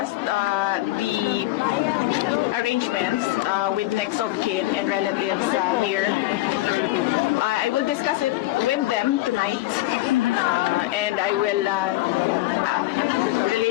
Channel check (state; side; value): quieter; right; 17.2 dB